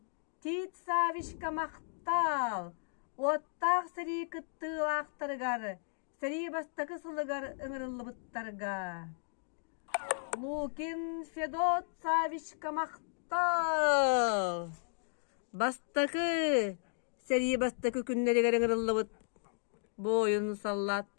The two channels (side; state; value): right; silent; digital silence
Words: Тит Савичка мақтал. Оттақ сери кыттылақтаргар. Сери бастакы сылыгар ыңырылы бұттарга. Лукин Федот Савичка мақтал. Бастакы, сери бастакы күннерігер ыңырылы бұт. Бойын